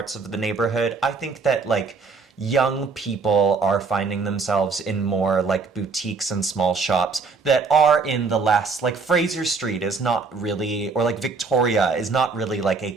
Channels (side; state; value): left; quieter; 4.4 dB